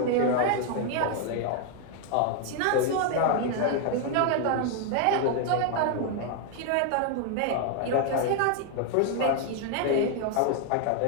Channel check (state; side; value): different; both; correlation 0.00